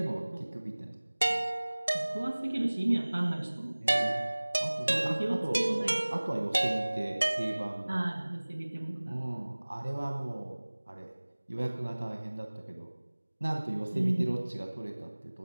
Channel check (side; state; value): both; inverted; correlation -1.00